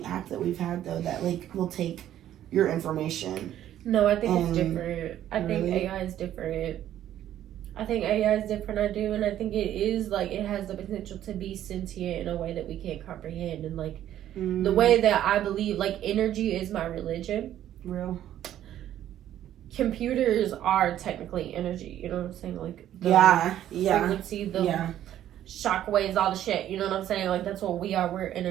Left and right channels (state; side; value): quieter; left; 11.8 dB